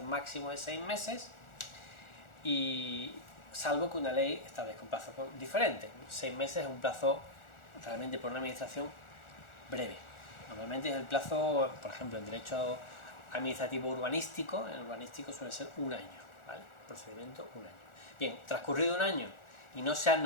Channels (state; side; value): late; right; 1.4 ms